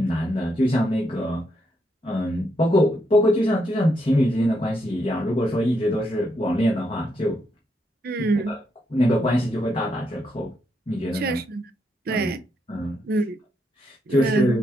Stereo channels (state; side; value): normal; both; correlation 0.79